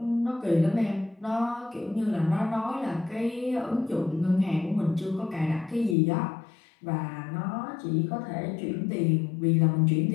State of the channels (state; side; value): drops out; right; at 6.0 s